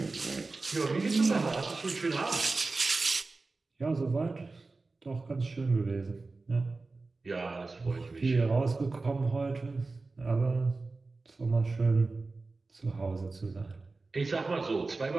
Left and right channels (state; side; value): quieter; left; 3.6 dB